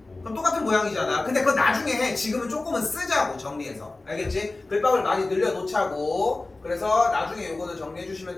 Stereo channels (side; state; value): right; quieter; 3.2 dB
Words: 그럼 똑같은 모양이잖아. 근데 그건 나중에 해. 지금은 조금은 쓰자고 정리해서. 알겠지? 글밥을 많이 늘려놓자고. 그래서 나중에 요거는 정리해 주시면